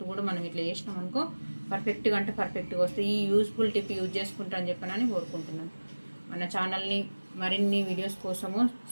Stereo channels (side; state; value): both; inverted; correlation -1.00